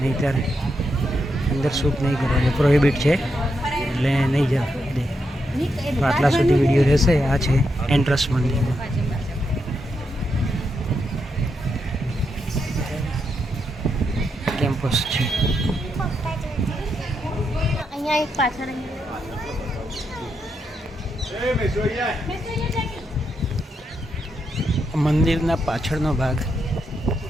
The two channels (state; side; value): normal; both; correlation 0.82